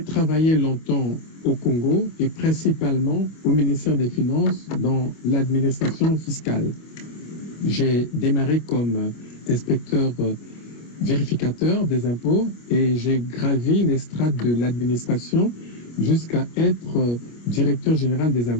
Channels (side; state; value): right; late; 25 ms